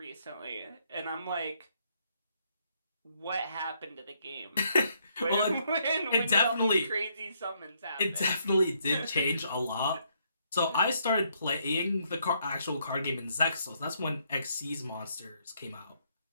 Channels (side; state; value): both; inverted; correlation -0.72